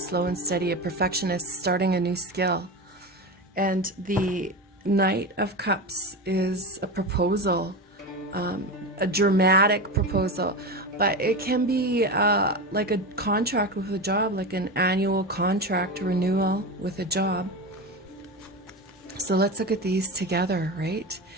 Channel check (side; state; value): both; normal; correlation 0.22